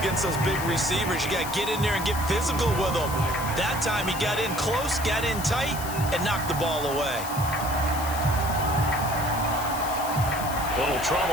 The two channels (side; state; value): left; noise; hiss, 10 dB below the sound